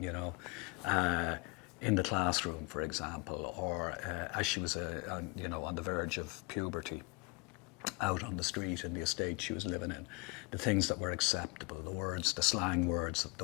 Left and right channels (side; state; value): right; quieter; 29.4 dB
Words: know, in the classroom, for example, or as she was, you know, on the verge of puberty, out on the street in the estate she was living in, the things that were acceptable, the words, the slang words,